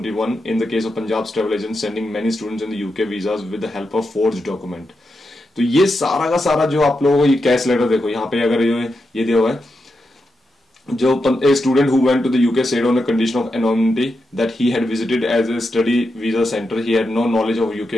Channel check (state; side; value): normal; both; correlation 0.87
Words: in the case of Punjab's travel agents sending many students in the UK visas with the help of forged document। तो ये सारा का सारा जो आप लोगों को ये कैश लेटर देखो यहाँ पे, अगर ये दिया हुआ है, जो a student who went to the UK said on a condition of anonymity that he had visited as a study visa center. He had no knowledge of UK